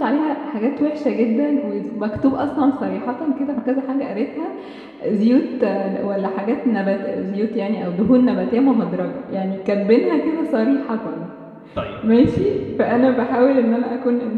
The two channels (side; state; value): both; identical; correlation 1.00